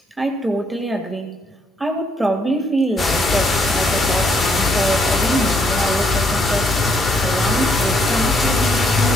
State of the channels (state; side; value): normal; both; correlation 0.71